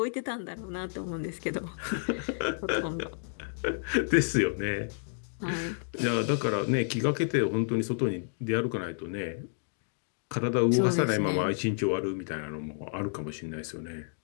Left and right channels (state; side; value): silent; right; digital silence